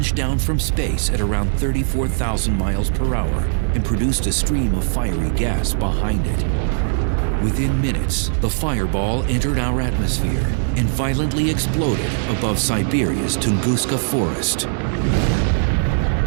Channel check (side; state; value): left; silent; digital silence